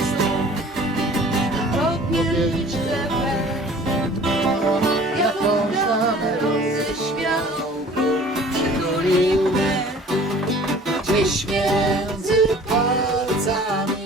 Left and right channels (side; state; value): both; normal; correlation 0.48